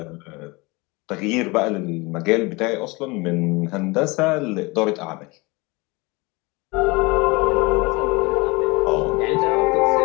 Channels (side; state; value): right; quieter; 25.1 dB